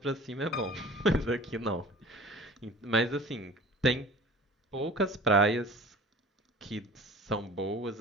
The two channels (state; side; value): normal; both; correlation 0.42